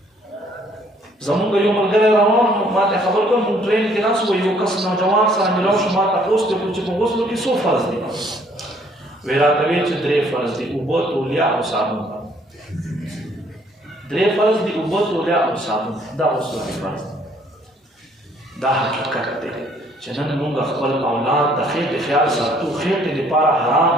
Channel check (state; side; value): normal; both; correlation 0.63